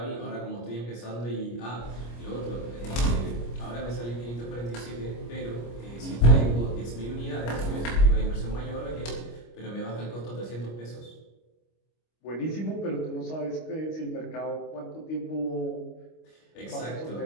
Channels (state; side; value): late; right; 25 ms